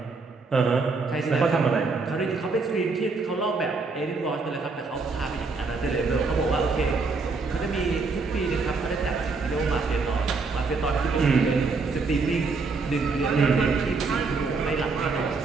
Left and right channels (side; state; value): left; quieter; 4.2 dB